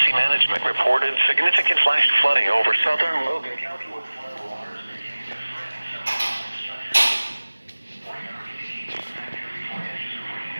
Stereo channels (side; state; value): both; inverted; correlation -1.00